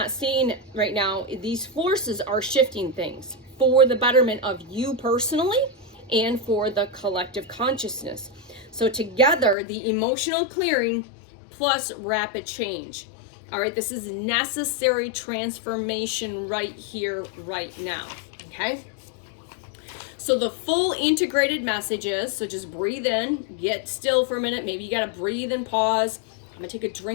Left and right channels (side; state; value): right; drops out; at 9.6 s